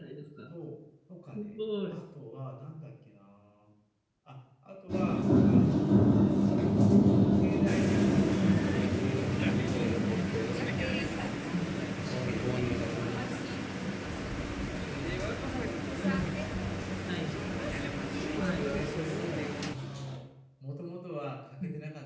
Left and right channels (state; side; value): identical; both; correlation 1.00